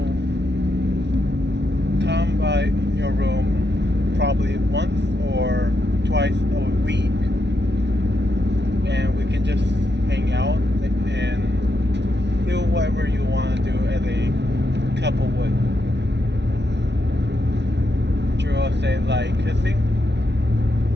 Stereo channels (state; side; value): late; left; 0.50 ms